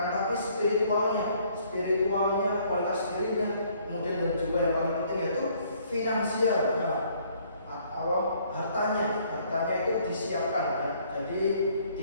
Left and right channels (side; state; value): both; inverted; correlation -0.63